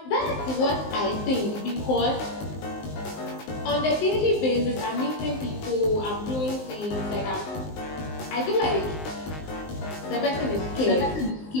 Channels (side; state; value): right; late; 19 ms